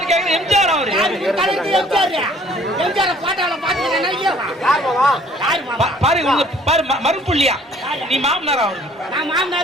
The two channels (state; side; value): normal; both; correlation 0.57